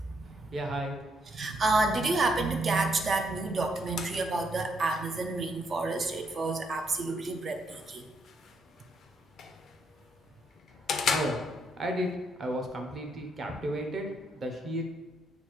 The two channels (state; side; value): normal; both; correlation 0.75